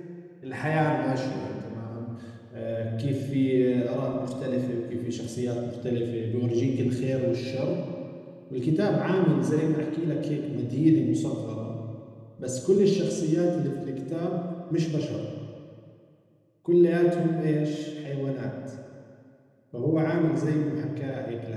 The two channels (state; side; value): identical; both; correlation 1.00